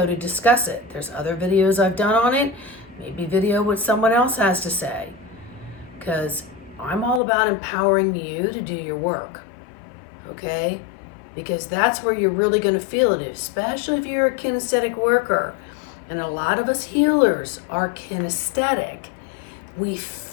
to discuss it. There's other videos I've done on it. Maybe video what someone else has to say. Because I'm all about empowering you to do your work. Okay? Because that's where you're really going to feel it, especially if you're a kinesthetic worker. And a lot of us healers are kinesthetic. We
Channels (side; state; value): right; drops out; at 7.2 s